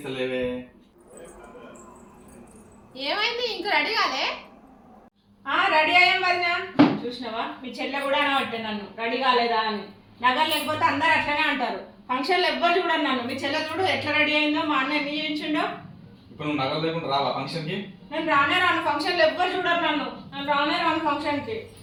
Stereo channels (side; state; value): both; identical; correlation 1.00